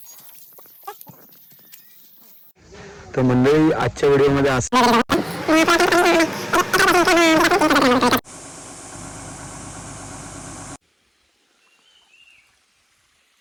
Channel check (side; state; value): both; identical; correlation 1.00